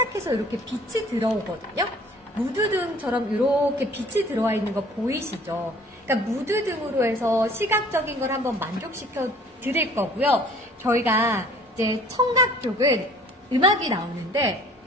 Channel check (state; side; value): normal; both; correlation 0.52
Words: 해서 이렇게 빛이 들어오거든요. 무드등처럼 이렇게 빛이 들어와 있는 거 보이시죠? 그러니까 무드등으로 해서 시각적인 걸 한번 만족시켜 드릴 거고요. 저희가 이제 청각 쪽은 음악이 나오는데